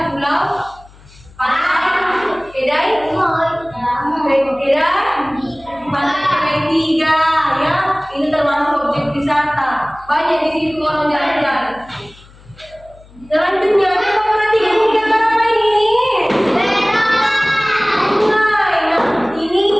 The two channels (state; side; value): noise; left; hum, 24 dB below the sound